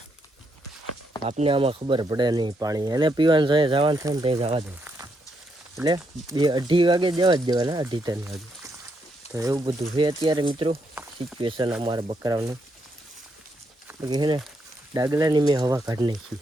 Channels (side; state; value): both; normal; correlation 0.78